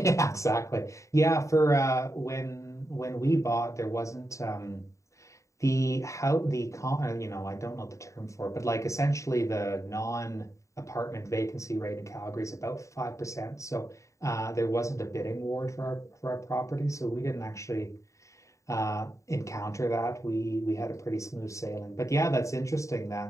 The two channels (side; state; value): right; late; 0.15 ms